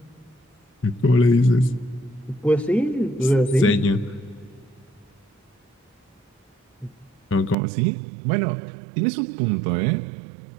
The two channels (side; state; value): left; drops out; at 7.6 s